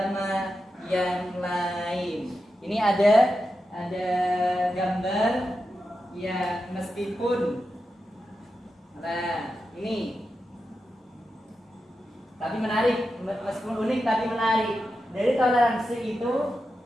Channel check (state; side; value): normal; both; correlation 0.89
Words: yang lain. Ini ada gambar ya, meskipun ini tapi menarik, meskipun unik tapi menarik. Dari toleransi itu,